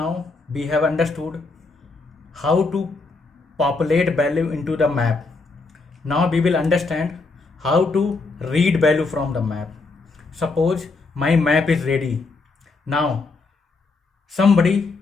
we have understood how to populate value into the map. Now we will understand how to read value from the map. Suppose my map is ready. Now somebody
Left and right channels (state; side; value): quieter; right; 3.8 dB